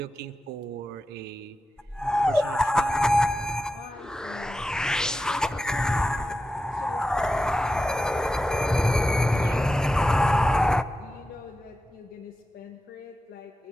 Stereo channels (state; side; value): normal; both; correlation 0.92